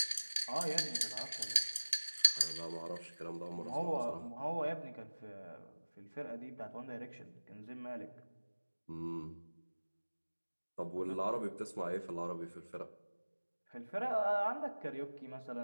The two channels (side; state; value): both; inverted; correlation -1.00